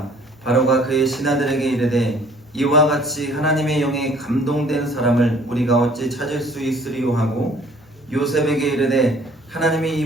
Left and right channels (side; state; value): both; normal; correlation 0.56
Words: 바로가 그의 신하들에게 이르되 이와 같이 하나님의 영에 감동된 사람을 우리가 어찌 찾을 수 있으리요 하고 요셉에게 이르되 하나님이 이